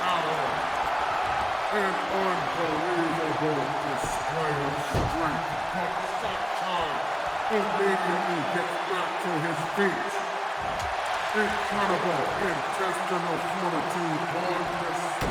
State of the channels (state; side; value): identical; both; correlation 1.00